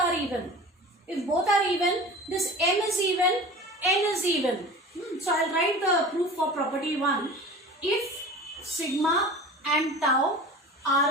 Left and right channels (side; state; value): both; normal; correlation 0.37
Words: even. If both are even, this m is even, n is even. So I'll write the proof for property 1. If sigma and tau